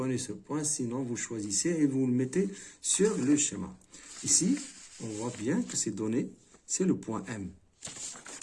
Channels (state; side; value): identical; both; correlation 1.00